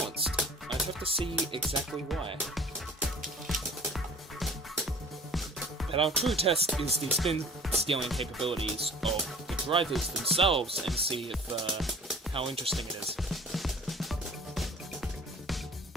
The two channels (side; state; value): both; normal; correlation 0.47